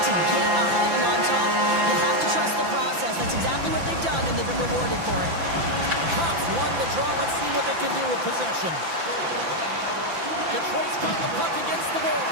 to get ahead and on top, you have to trust the process. That's exactly what they've done, and they've been rewarded for it. Cops won the draw. Let's see what they can do with possession. Detroit's got the puck against the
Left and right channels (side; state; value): left; late; 5.9 ms